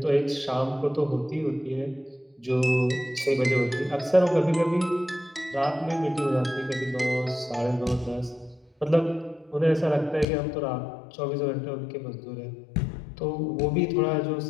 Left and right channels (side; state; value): right; drops out; at 10.2 s